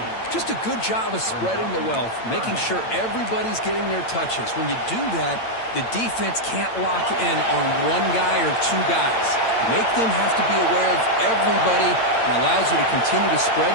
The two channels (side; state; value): right; late; 8.8 ms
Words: Just a good job of spreading the wealth, making sure everybody's getting their touches. When you do that, the defense can't lock in on one guy or two guys. Make them have to be aware of everybody and allows you to continue to spread